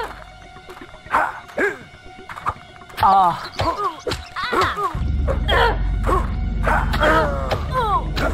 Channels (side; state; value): both; identical; correlation 1.00